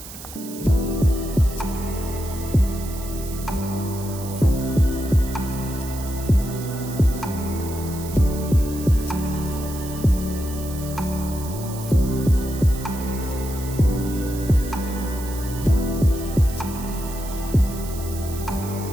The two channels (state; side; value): noise; right; hiss, 13 dB below the sound